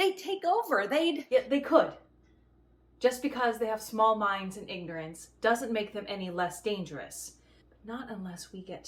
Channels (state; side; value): identical; both; correlation 1.00